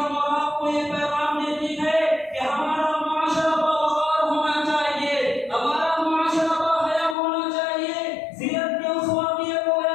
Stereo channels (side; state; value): right; drops out; at 7.2 s